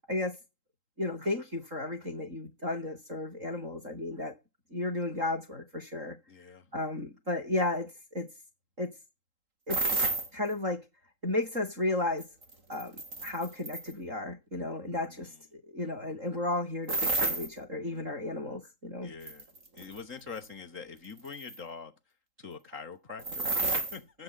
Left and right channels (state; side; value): late; left; 3.8 ms